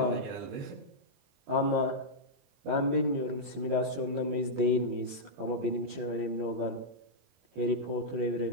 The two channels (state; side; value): late; left; 22 ms